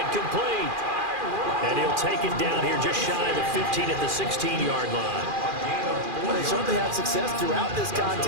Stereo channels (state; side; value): late; left; 2.4 ms